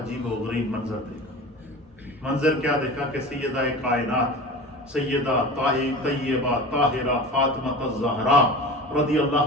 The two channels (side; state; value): both; normal; correlation 0.34